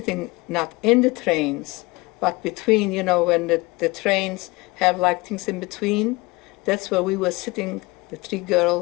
not in the trains, but between, when the trains have like things in between. That's where we were sitting, the 3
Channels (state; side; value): quieter; right; 23.6 dB